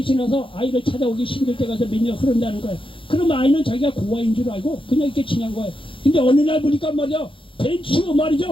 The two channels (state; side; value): late; right; 0.25 ms